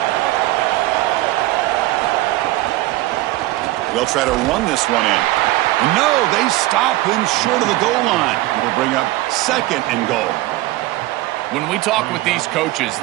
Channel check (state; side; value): quieter; left; 17.9 dB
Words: They'll try to run this one in. No, they stop him short of the goal line. It'll bring up 2nd and goal. When we talk with these coaches,